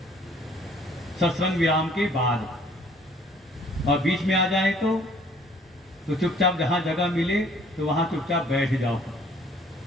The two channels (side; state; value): both; normal; correlation 0.57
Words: सत्संग विराम के बाद, और बीच में आ जाए तो चुपचाप जहां जगह मिले तो वहां चुपचाप बैठ जाओ।